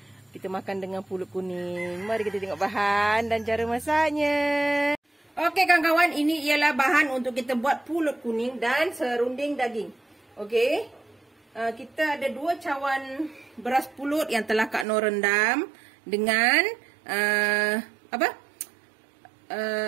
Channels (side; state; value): left; drops out; at 14.9 s